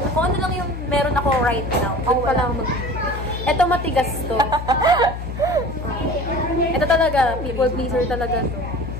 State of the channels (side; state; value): left; noise; hum, 7 dB below the sound